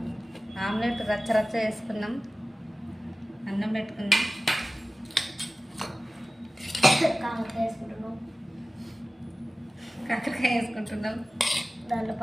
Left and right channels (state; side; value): normal; both; correlation 0.96